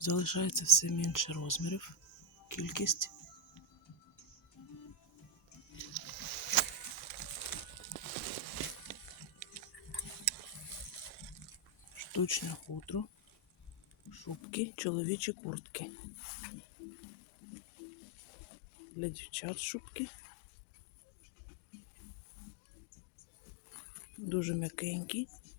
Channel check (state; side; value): drops out; right; at 14.4 s